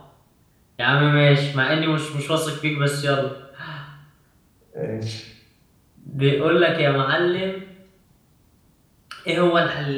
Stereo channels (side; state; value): both; identical; correlation 1.00